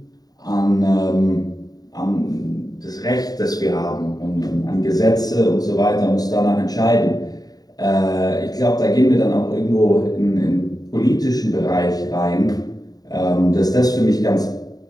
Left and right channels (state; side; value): late; right; 0.18 ms